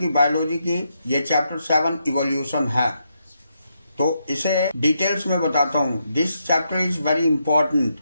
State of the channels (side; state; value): both; inverted; correlation -0.81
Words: बायोलॉजी की। ये चैप्टर 7 इवोल्यूशन है, तो इसे डिटेल्स में बताता हूँ। This chapter is very important.